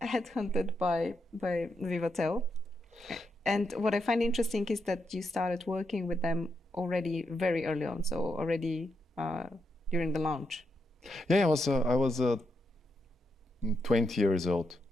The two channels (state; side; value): normal; both; correlation 0.83